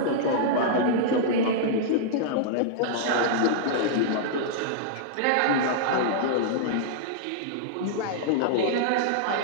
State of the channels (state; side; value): different; both; correlation -0.02